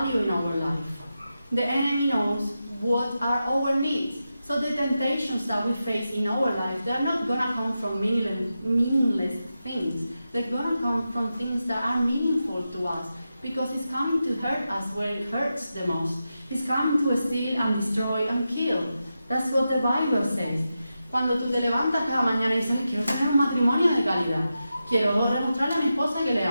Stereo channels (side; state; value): both; inverted; correlation -0.90